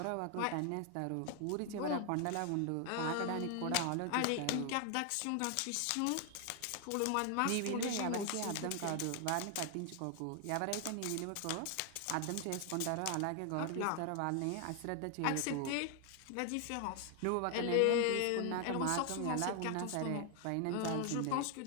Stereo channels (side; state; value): both; different; correlation 0.00